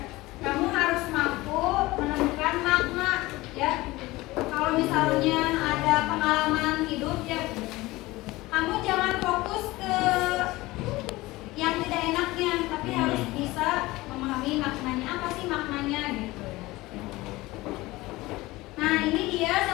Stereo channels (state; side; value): quieter; right; 19.8 dB